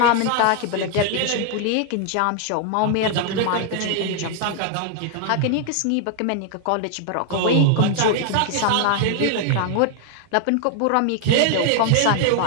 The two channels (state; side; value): different; both; correlation 0.00